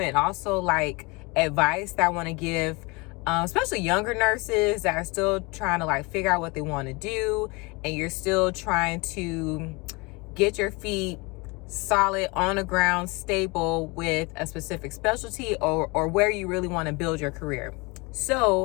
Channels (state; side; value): quieter; right; 26.9 dB